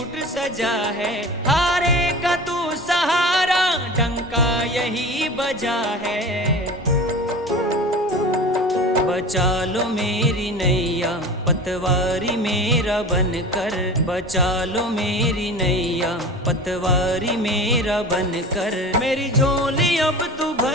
सजा है। हारे का तू सहारा डंका यही बजा है। बचा लो मेरी नैया पतवारी मेरा बनकर। बचा लो मेरी नैया पतवारी मेरा बनकर। मेरी झोली अब तू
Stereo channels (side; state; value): both; normal; correlation 0.35